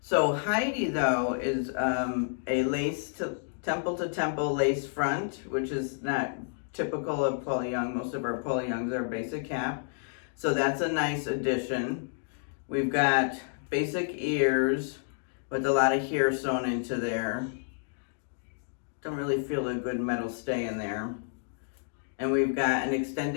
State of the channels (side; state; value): right; silent; digital silence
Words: So Heidi, though, is a lace to temple lace front, which is not typical of Paula Young. Most of our Paula Youngs are basic cap. So that's a nice addition. We've got basic ears with a lot of hair sewn into there. Don't really feel a good metal stay in there. And we've got an